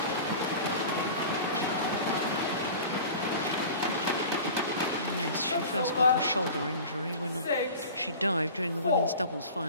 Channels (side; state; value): both; inverted; correlation -0.38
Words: Yes, she first got a shoulder injury when she dived during the women's doubles